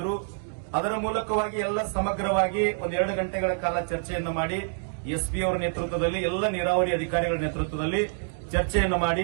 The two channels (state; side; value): silent; left; digital silence